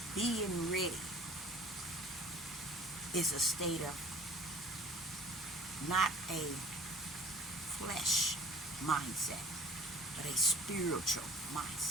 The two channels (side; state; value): both; normal; correlation 0.49